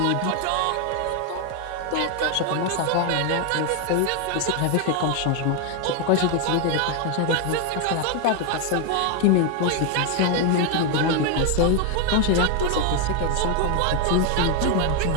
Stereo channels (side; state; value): both; different; correlation 0.01